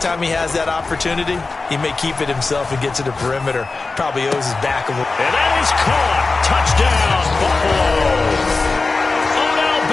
time he has that opportunity, he may keep it himself and get to the perimeter. Probably owes his back a little. And that is caught. Touchdown, Buffalo. Odell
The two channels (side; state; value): right; quieter; 3.8 dB